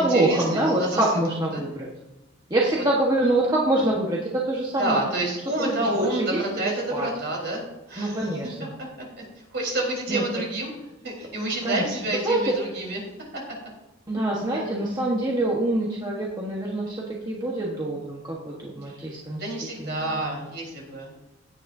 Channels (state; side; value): normal; both; correlation 0.37